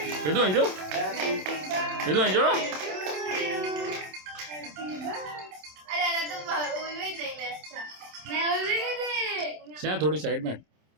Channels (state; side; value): late; left; 27 ms